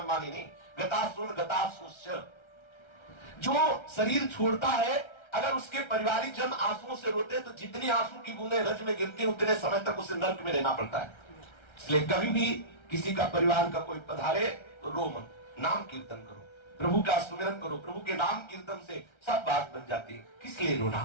नहीं। गतासुश्च, जो शरीर छोड़ता है, अगर उसके पारिवारिक जन आंसुओं से रोते तो जितनी आंसू की बूंदें रज में गिरती उतने समय तक उसे नर्क में रहना पड़ता है। इसलिए कभी भी किसी का परिवार का कोई पधारे तो रो मत, नाम कीर्तन करो, प्रभु का सुमिरन करो। प्रभु के नाम कीर्तन से सब बात बन जाती है। किस लिए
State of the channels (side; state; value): right; late; 1.3 ms